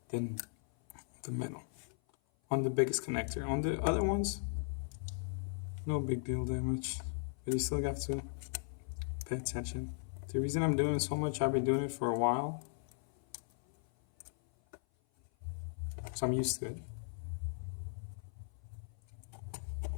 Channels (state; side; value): silent; right; 53 dB below the other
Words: then the middle. on the biggest connector. On the other ones, no big deal damage, but you still have to pay attention. The reason I'm doing it so much, I've been doing it for a while, so I'm used to it.